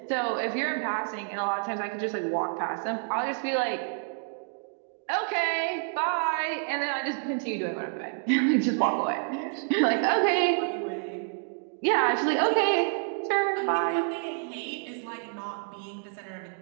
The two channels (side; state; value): left; silent; 59 dB below the other